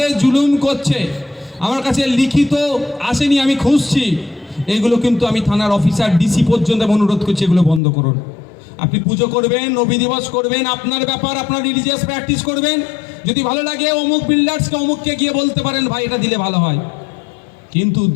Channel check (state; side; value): drops out; right; at 7.8 s